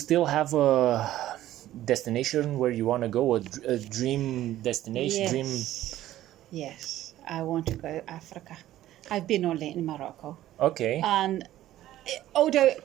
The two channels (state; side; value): quieter; left; 13.8 dB